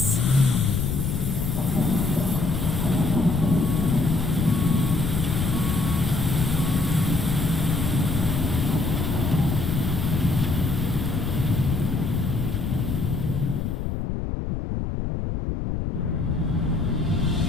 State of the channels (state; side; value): noise; left; rumble, 2 dB below the sound